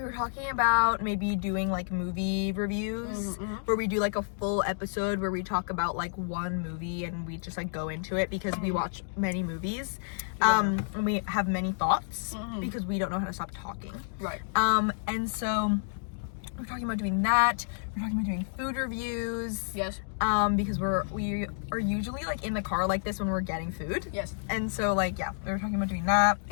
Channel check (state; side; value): silent; right; digital silence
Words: talking about maybe doing like movie reviews where we do like a full episode where we talk about like one movie and we just like go into it because we watch many movies. And we have many thoughts because we don't know how to stop talking. Right. And so we're talking about doing that. We're talking about doing food reviews. Yes. Because we are usually like in the car like this when we're getting food. Yes. And so like, yeah, we were talking about doing that.